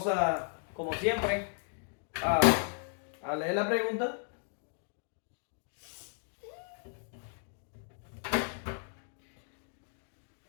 a, como siempre, a, a leer la pregunta.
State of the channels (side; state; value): right; silent; 54 dB below the other